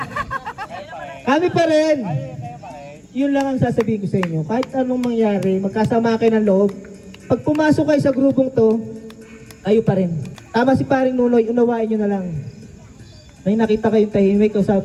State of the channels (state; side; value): identical; both; correlation 1.00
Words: Kami pa rin. Yun lang ang sasabihin ko sa inyo. Kahit anong mangyari, magkasama kayo ng loob. Pag pumasok kayo sa grupong to, kayo pa rin. Tama si paring Nunoy, unawain nyo na lang. May nakita kayong tahimik,